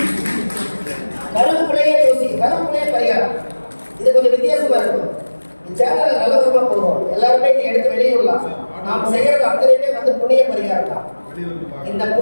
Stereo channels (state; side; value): inverted; both; correlation -1.00